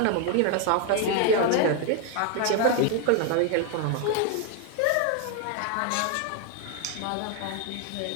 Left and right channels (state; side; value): different; both; correlation 0.01